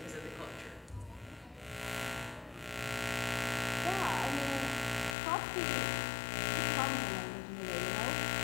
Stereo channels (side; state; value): right; drops out; at 5.2 s